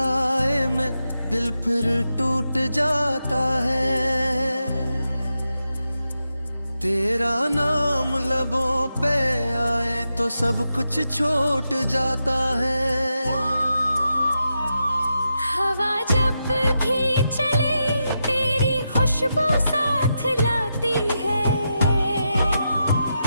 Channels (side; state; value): both; inverted; correlation -0.87